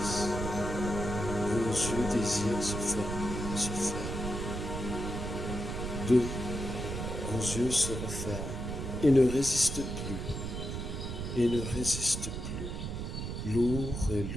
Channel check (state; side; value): noise; right; rumble, 4 dB below the sound